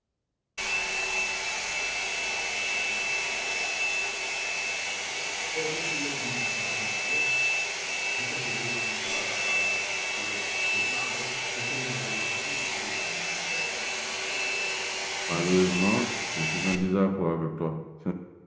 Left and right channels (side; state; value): both; identical; correlation 1.00